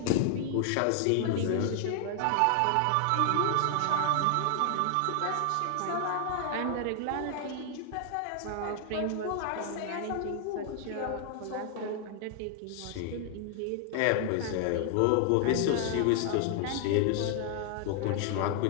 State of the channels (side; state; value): both; different; correlation 0.00